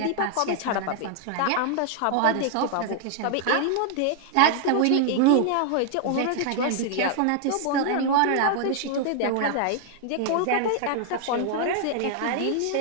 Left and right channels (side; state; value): both; different; correlation 0.00